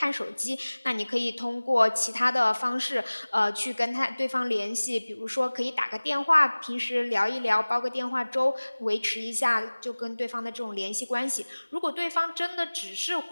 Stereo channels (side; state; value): both; inverted; correlation -1.00